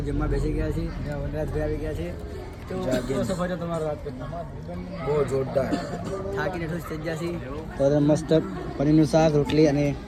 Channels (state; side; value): identical; both; correlation 1.00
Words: જમવા બેસી ગયા છીએ. વનરાજભાઈ આવી ગયા છે. તો તમારો બહુ જોરદાર થાકીને ઠૂસ થઈ ગયા છીએ. તો મસ્ત પનીરનું શાક, રોટલી અને